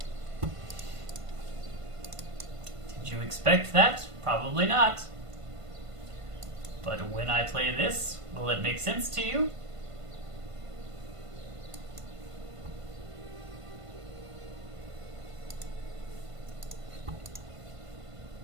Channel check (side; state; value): left; late; 1.5 ms